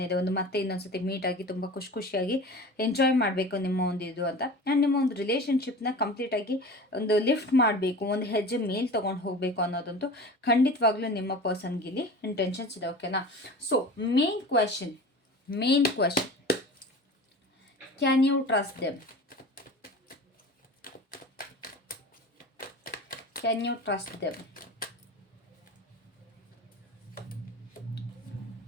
ಇದೆ. ಒಂದು ಮತ್ತೆ ಇನ್ನೊಂದ್ಸತಿ ಮೀಟ್ ಆಗಿ ತುಂಬ ಖುಷಿಯಾಗಿ ಎಂಜಾಯ್ ಮಾಡಬೇಕು ನಿಮ್ಮ ಒಂದು ಇದು ಅಂತ. ಆ್ಯಂಡ್ ನಿಮ್ಮ ಒಂದು ರಿಲೇಷನ್ಶಿಪ್ನ ಕಂಪ್ಲೀಟಾಗಿ ಒಂದು ಲಿಫ್ಟ್ ಮಾಡಬೇಕು, ಒಂದು ಹೆಜ್ಜೆ ಮೇಲೆ ತೊಗೊಂಡು ಹೋಗಬೇಕು ಅನ್ನೋದಂತೂ ಖಂಡಿತವಾಗ್ಲೂ ನಿಮ್ಮ ಪರ್ಸನ್ಗಿಲ್ಲಿ ಇಂಟೆನ್ಷನ್ಸ್ ಇದೆ. ಓಕೆನಾ? So main question, can you trust them? Can you trust them?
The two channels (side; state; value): both; normal; correlation 0.36